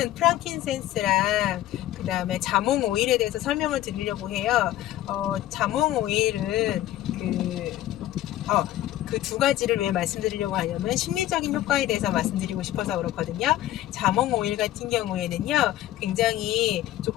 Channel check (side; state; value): right; quieter; 14.0 dB